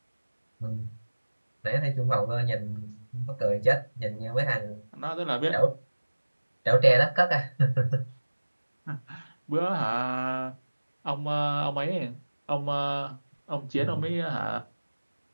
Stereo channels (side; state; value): both; inverted; correlation -1.00